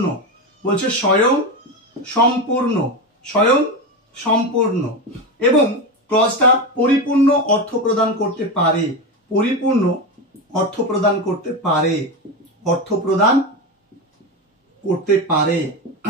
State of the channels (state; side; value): normal; both; correlation 0.17